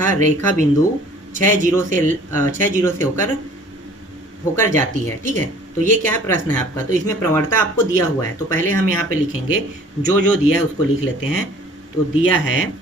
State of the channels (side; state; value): both; normal; correlation 0.52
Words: रेखा बिंदु 6 0 से होकर जाती है, ठीक है। तो ये क्या है, प्रश्न है आपका, तो इसमें प्रवणता आपको दिया हुआ है। तो पहले हम यहाँ पे लिखेंगे, जो दिया है उसको लिख लेते हैं। तो दिया है,